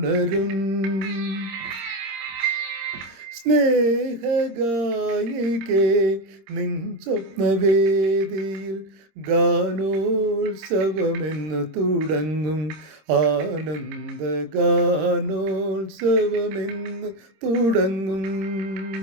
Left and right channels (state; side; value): late; left; 26 ms